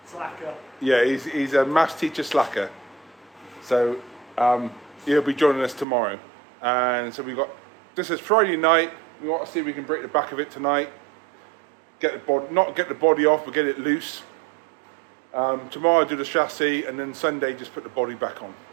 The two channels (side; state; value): left; drops out; at 5.9 s